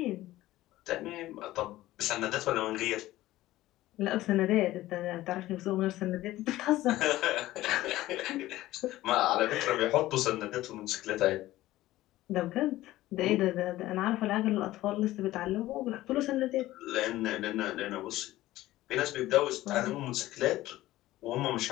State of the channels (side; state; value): right; quieter; 16.1 dB